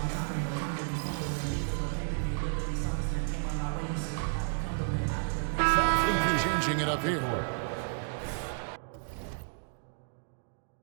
Changing it up here.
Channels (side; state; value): left; silent; digital silence